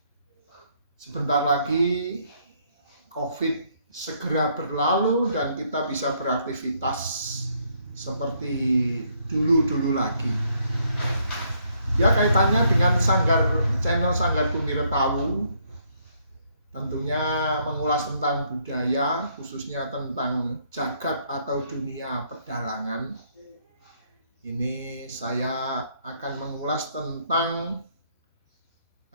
sebentar lagi COVID segera berlalu dan kita bisa beraktivitas seperti dulu-dulu lagi. Ya, kaitannya dengan channel Sanggar Bumi Retawu, tentunya mengulas tentang budaya, khususnya tentang jagat atau dunia pedalangan. Ini saya akan mengulas tentang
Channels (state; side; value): inverted; both; correlation -0.69